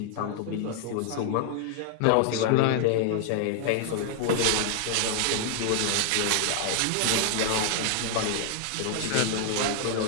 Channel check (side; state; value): both; different; correlation 0.00